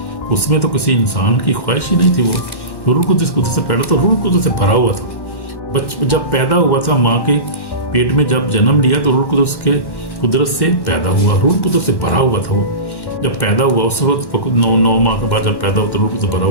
उसमें तो किसी इंसान की ख्वाहिश ही नहीं थी। वो रूह कुदरत से पैदा, तो रूह कुदरत से भरा हुआ था। जब पैदा हुआ था माँ के पेट में, जब जन्म लिया तो रूह कुदरत से पैदा हुआ, रूह कुदरत से भरा हुआ था। वो जब पैदा हुआ उस वक्त 9 माह के बाद जब पैदा हुआ तो रूह से भरा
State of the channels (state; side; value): late; right; 1.1 ms